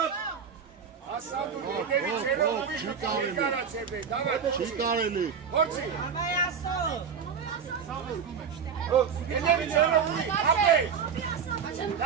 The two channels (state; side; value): quieter; left; 6.9 dB